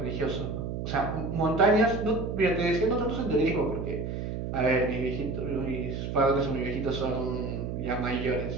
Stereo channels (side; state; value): right; noise; hum, 4 dB below the sound